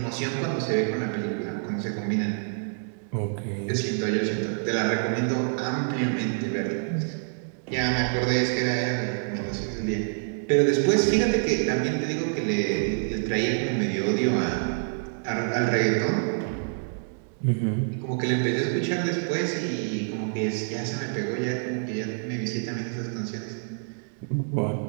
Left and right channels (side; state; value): left; silent; digital silence